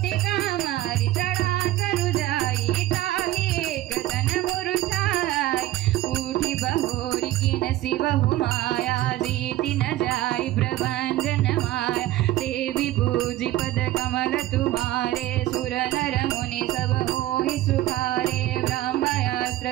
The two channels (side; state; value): left; quieter; 15.4 dB